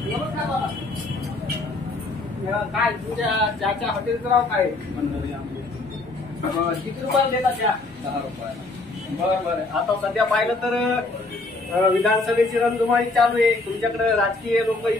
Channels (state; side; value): quieter; right; 3.2 dB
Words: नमस्कार बाबा. काय तुझ्या चहाच्या हॉटेलचं नाव काय? किती रुपयाला देतात त्या? 10 रुपयाला. बरं बरं. आता सध्या पाहिलं तर विधानसभेची रणधुमाळी चालू आहे. तुमच्याकडे राजकीय लोक